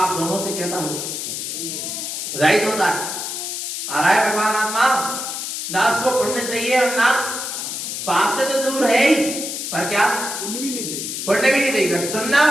दोनों से कैसा हो, रहित होता है। आ रहा है भगवान आत्मा, ना उसको पुण्य चाहिए और ना पाप से तो दूर है ही, पर क्या पुण्य भी नहीं चाहिए, पुण्य भी नहीं चाहिए। सुनना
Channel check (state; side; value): noise; left; hiss, 5 dB below the sound